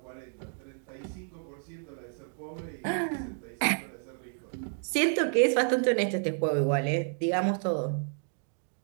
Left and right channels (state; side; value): silent; left; 57 dB below the other